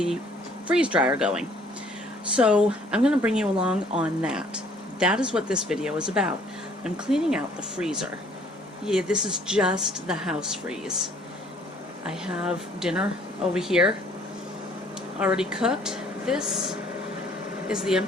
freeze dryer going. So I'm going to bring you along on that. That is what this video is about. I'm cleaning out the freezer. Yeah, this is just the house freeze. I have dinner over here already cooked. This is the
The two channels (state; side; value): normal; both; correlation 0.59